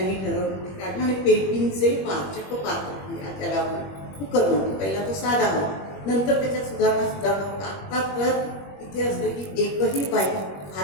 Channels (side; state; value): right; late; 21 ms